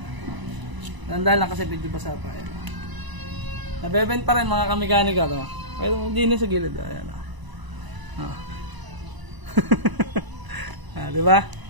Tandaan lang kasi medyo basa pa. Nabebend pa rin mga kamekaniko to. Pero hindi na sa gilid. Ayan. Diba?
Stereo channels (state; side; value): late; left; 1.0 ms